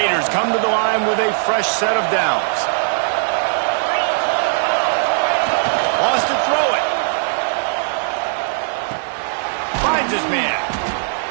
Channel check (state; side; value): silent; left; digital silence